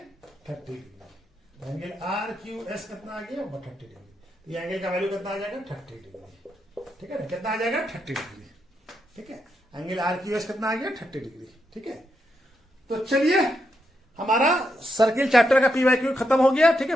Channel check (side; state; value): both; normal; correlation 0.82